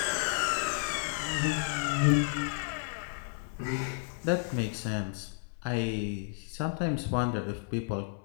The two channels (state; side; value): silent; right; 56 dB below the other